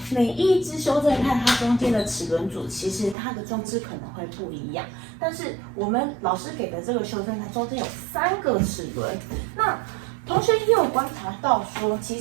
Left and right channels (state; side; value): drops out; left; at 3.2 s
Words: 每一只修正带它中间的齿轮组，其实它的装置可能会不一样，但是我们老师给的这个修正带中间有3个齿轮，那同学也有观察到说，其